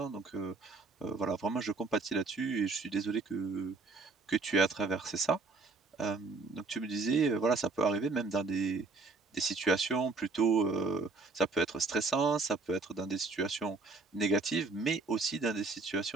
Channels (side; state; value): left; quieter; 3.8 dB